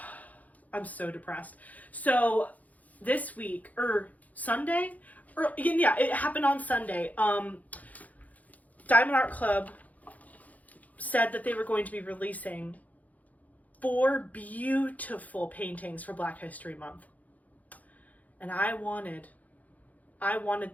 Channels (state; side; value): late; right; 0.076 ms